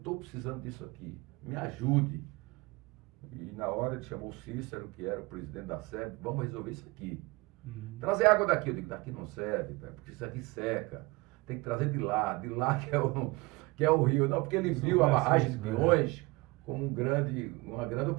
precisando disso aqui. Me ajude. E na hora ele chamou o Cícero, que era o presidente da SEB, vamos resolver isso aqui. Trazer água daqui. Eu digo, daqui não serve, porque isso aqui seca. Tem que trazer de lá que é o rio. Não, porque ele viu a barragem de Pinhões como uma grande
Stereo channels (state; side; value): quieter; left; 24.0 dB